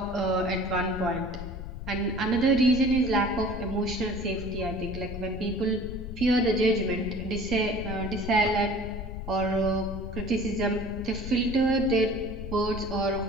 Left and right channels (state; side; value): noise; left; rumble, 8 dB below the sound